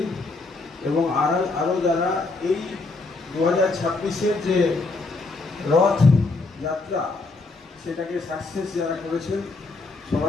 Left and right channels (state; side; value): quieter; right; 3.5 dB